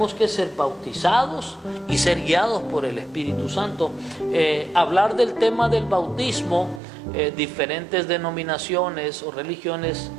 que ser bautizados y ser guiados por el Espíritu Santo. Hablar del tema del bautismo, diferentes denominaciones o religiones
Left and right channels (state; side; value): drops out; left; at 6.8 s